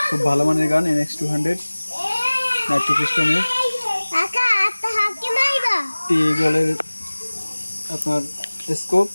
খুব ভালো মানের গান, NX200 নাইট্রো পিস্টনের টি গলের আপনার স্কোপ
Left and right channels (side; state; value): both; inverted; correlation -1.00